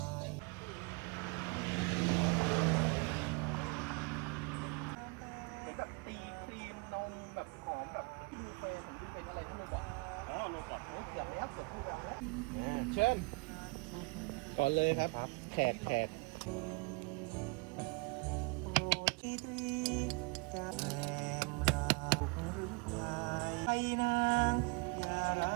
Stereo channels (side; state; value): left; quieter; 28.8 dB